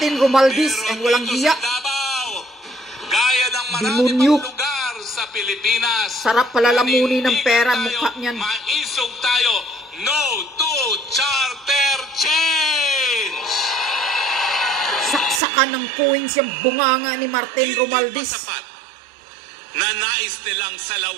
Romualdez ang walang dito hiya. sa Davao, gaya ng marami Demonyo. pang lugar sa Pilipinas, Sarap palalamunin ng pera ang manindigan mukha tayo, niyan. Maisog tayo. No to charter change. Saksakan ng coins yung bunganga ni Martin Hindi Romualdez. pa sapat na nais nilang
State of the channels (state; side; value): drops out; left; at 15.4 s